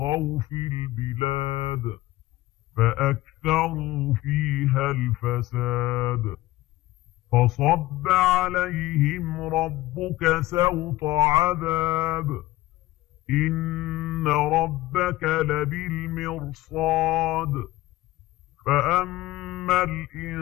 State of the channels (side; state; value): right; quieter; 17.6 dB